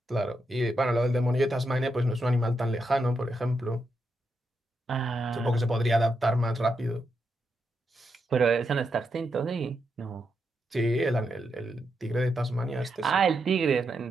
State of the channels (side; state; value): both; normal; correlation 0.83